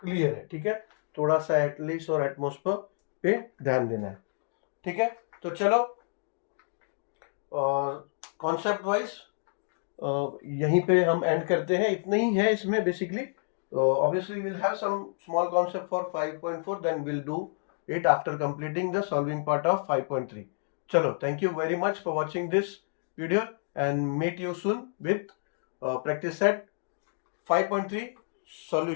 क्लियर है, ठीक है। थोड़ा सा एटलीस्ट और एटमोस्फेयर पे ध्यान देना है, ठीक है। तो चलो, और कॉन्सेप्ट वाइज यहीं पे हम एंड करते हैं, इतना ही है इसमें basically. Obviously will have some small concept for 5.4, then will do it after completing the solving part of 5.3. Chalo, thank you very much for watching this video, and meet you soon with practice set 5.3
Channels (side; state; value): right; silent; digital silence